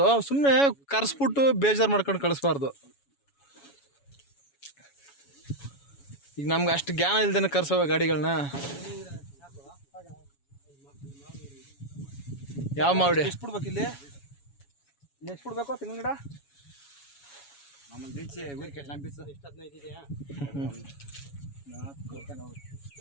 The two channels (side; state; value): right; late; 7.1 ms